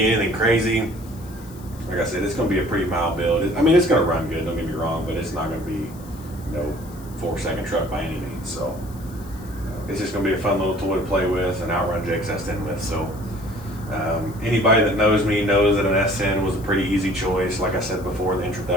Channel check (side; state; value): left; noise; hiss, 22 dB below the sound